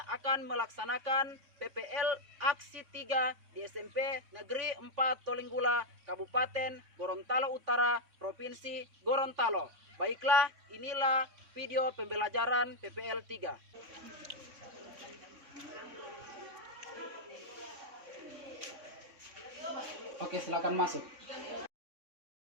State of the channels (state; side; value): late; left; 3.6 ms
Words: akan melaksanakan PPL Aksi 3 di SMP Negeri 4 Tolinggula, Kabupaten Gorontalo Utara, Provinsi Gorontalo. Baiklah, inilah video pembelajaran PPL 3. Oke, silakan masuk.